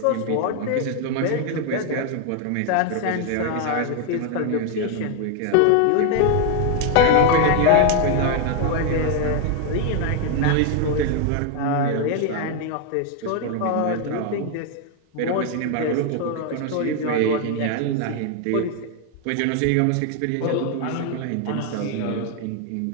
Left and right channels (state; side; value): different; both; correlation 0.00